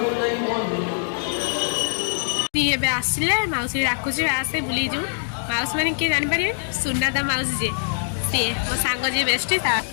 ये आसिले मौसी डाकुची आसे बुले जीव माउस मैंने किए जापर सुनादा माउसी जे सी मो सांग जी बेस्ट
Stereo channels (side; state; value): right; silent; digital silence